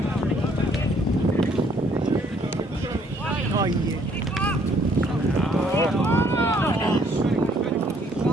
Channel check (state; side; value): normal; both; correlation 0.64